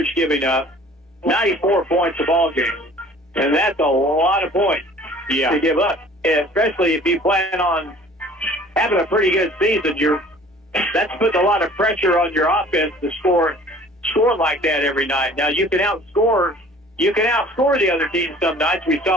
giving up 94 points a ball game. And that's a lot of points to give up. And especially if you plan on having a pretty good season, that's putting a lot of pressure on your offense to score like that every night. Now you can outscore the other team some nights. We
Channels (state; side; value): normal; both; correlation 0.49